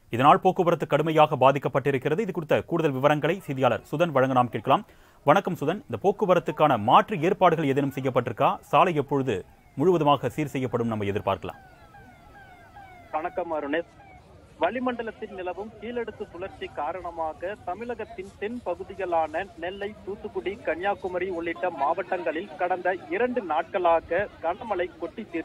இதனால் போக்குவரத்து கடுமையாக பாதிக்கப்பட்டிருக்கிறது. இது குறித்த கூடுதல் விவரங்களை செய்தியாளர் சுதன் வழங்க நாம் கேட்கலாம். வணக்கம் சுதன், இந்த போக்குவரத்துக்கான மாற்று ஏற்பாடுகள் ஏதேனும் செய்யப்பட்டிருக்கா? சாலை எப்பொழுது முழுவதுமாக சீர் செய்யப்படும் நம்ம எதிர்பார்க்கலாம்? வணக்கம் அருணேஷ். வளிமண்டலத்தில் நிலவும் கீழடுக்கு சுழற்சி காரணமாக தமிழகத்தின் தென் பகுதிகளான நெல்லை, தூத்துக்குடி, கன்னியாகுமரி உள்ளிட்ட மாவட்டங்களில் கடந்த 2 நாட்களாக கனமழை கொட்டி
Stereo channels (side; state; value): both; identical; correlation 1.00